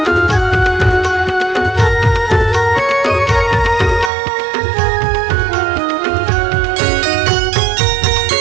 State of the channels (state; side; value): drops out; left; at 4.1 s